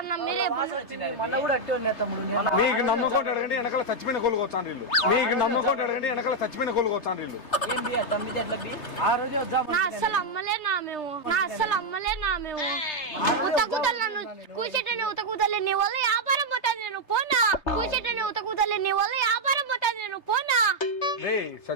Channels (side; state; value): right; late; 3.3 ms